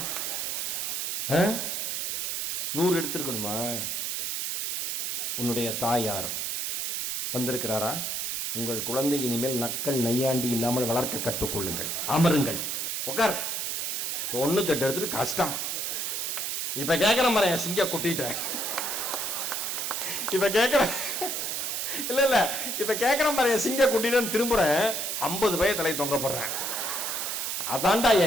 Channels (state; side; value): noise; right; hiss, 1 dB below the sound